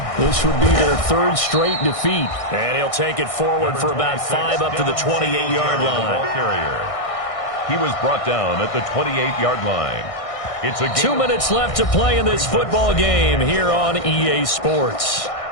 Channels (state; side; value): late; right; 1.6 ms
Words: This would be their 3rd straight defeat. And he'll take it forward for about 5 up to the 28-yard line. He was brought down at the 28-yard line. It's a 2 minutes left to play in this football game here on EA Sports.